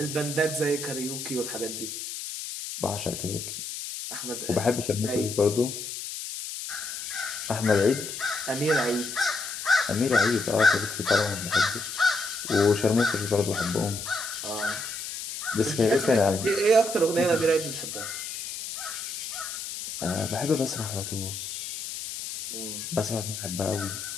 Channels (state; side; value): noise; left; hiss, 7 dB below the sound